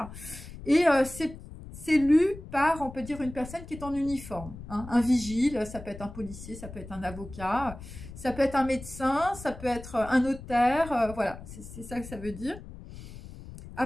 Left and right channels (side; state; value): left; noise; rumble, 14 dB below the sound